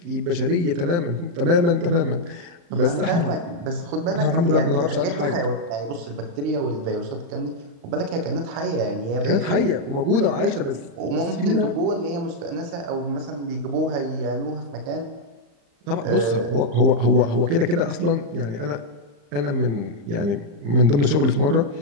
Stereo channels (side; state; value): left; late; 35 ms